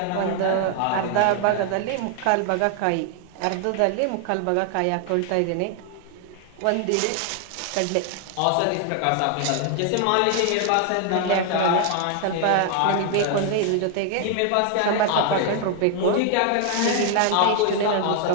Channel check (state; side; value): different; both; correlation 0.00